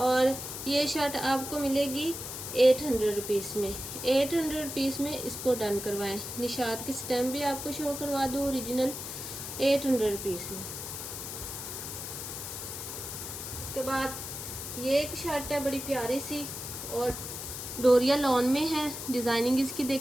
ये शर्ट आपको मिलेगी 800 रुपीज़ में। 800 रुपीज़ में इसको डन करवाएं। निशात की स्टैम्प भी आपको शो करवा दूँ ओरिजिनल, 800 रुपीज़ में। उसके बाद ये एक शर्ट है बड़ी प्यारी सी और डोरिया लॉन में है, डिज़ाइनिंग इसकी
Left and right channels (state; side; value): noise; left; hiss, 7 dB below the sound